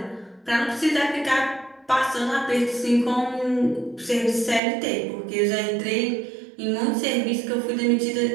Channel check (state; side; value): drops out; left; at 4.6 s